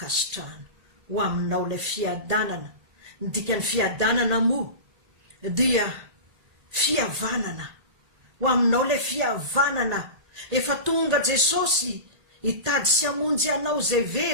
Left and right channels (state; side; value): late; left; 1.9 ms